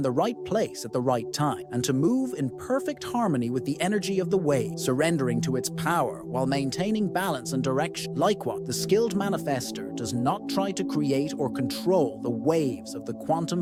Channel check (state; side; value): identical; both; correlation 1.00